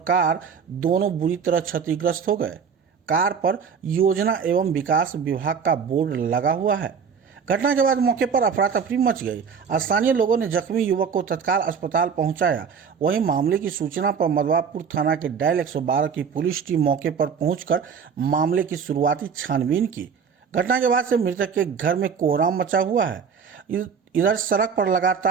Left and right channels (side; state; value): left; quieter; 6.5 dB